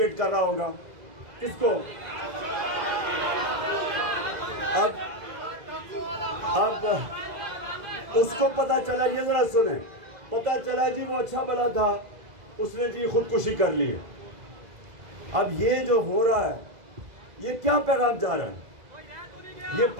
कर रहा होगा, किसको। अब उसको पता चला, ये जरा सुने, पता चला जी वो अच्छा भला था, उसने जी खुदकुशी कर ली है। अब ये जो हो रहा है, ये क्या पैगाम जा रहा है, ये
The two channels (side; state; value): left; late; 2.0 ms